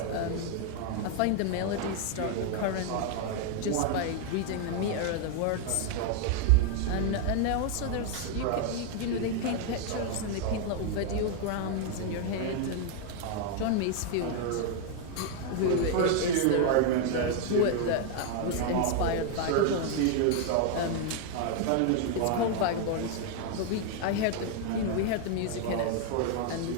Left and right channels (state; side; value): different; both; correlation 0.00